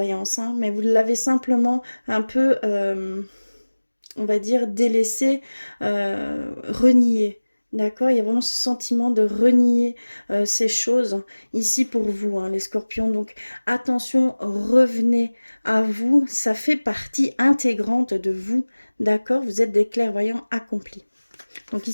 hein, mais vous l'avez simplement un peu, on va dire, délaissé, renié. D'accord, il y a vraiment ce sentiment de renier ces choses ici pour vous, hein, les scorpions. Donc attention, revenez à vous, ça fait partie intégrante de vous. D'accord, vous êtes des clairvoyants accomplis. Donc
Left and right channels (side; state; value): both; inverted; correlation -1.00